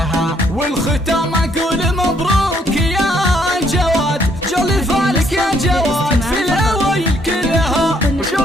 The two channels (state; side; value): normal; both; correlation 0.69